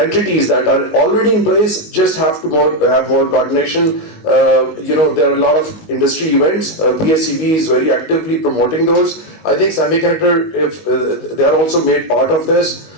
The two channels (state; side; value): late; right; 19 ms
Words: that are already in place, just have to have more coordination. There are a lot of industry events. PSEB is very actively promoting those. I think semiconductor, if they are also made part of this